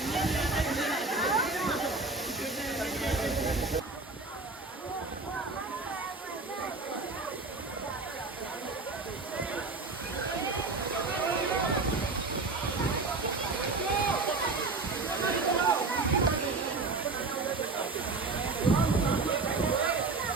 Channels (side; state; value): left; quieter; 3.7 dB